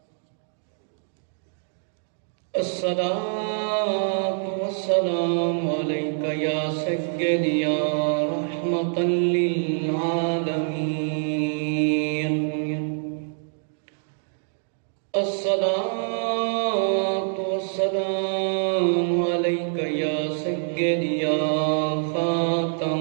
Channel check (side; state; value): left; silent; digital silence